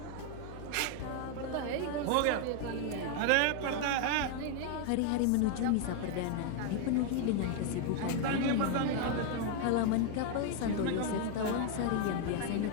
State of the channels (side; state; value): both; different; correlation 0.01